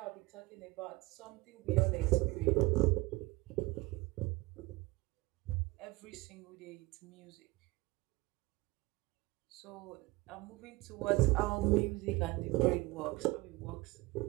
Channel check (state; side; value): quieter; left; 21.4 dB